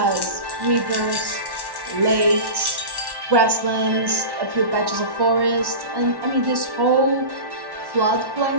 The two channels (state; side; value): late; left; 1.1 ms